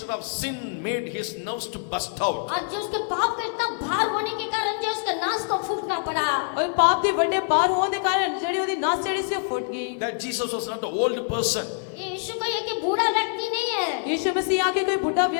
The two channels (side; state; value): right; silent; digital silence